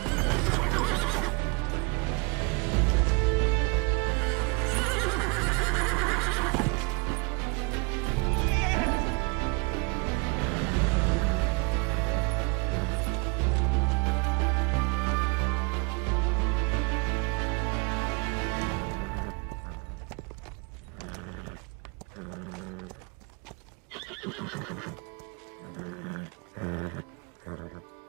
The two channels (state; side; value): quieter; left; 30.9 dB